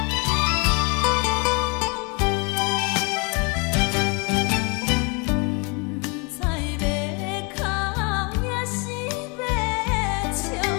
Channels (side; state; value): right; quieter; 31.5 dB